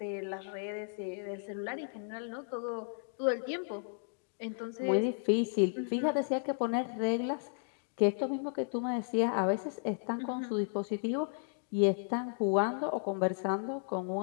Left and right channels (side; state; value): right; silent; digital silence